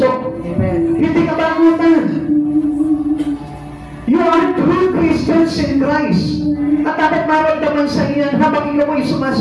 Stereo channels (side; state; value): both; identical; correlation 1.00